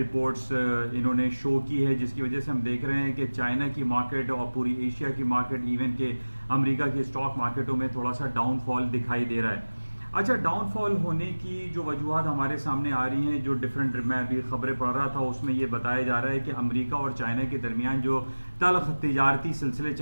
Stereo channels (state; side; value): inverted; both; correlation -1.00